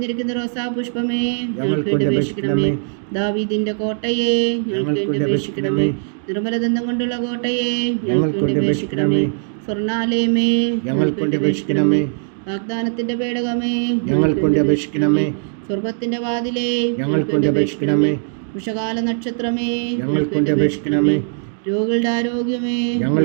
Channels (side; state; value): left; silent; digital silence